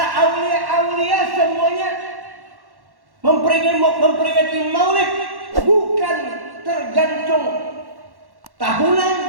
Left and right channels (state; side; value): late; left; 1.1 ms